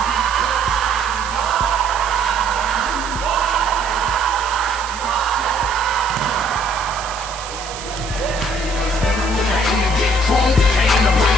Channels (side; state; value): right; noise; hiss, 12 dB below the sound